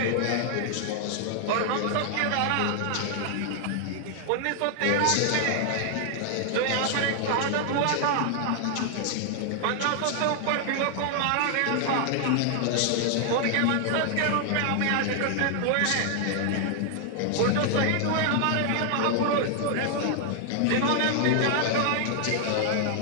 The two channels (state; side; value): different; both; correlation 0.00